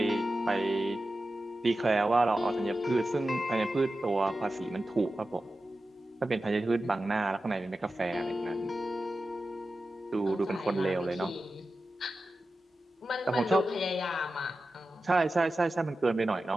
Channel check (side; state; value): both; normal; correlation 0.93